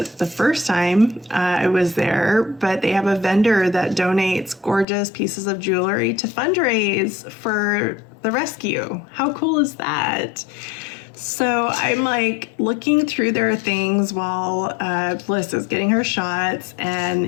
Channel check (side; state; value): right; drops out; at 4.9 s